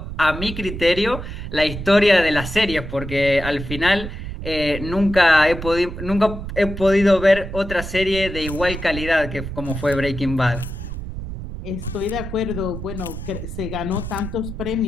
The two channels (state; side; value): noise; right; rumble, 8 dB below the sound